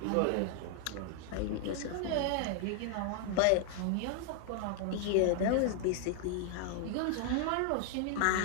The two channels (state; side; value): different; both; correlation 0.00